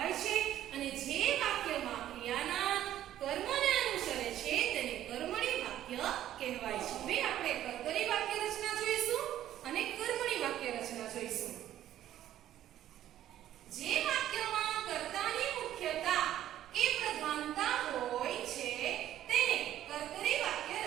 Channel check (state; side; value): quieter; left; 12.3 dB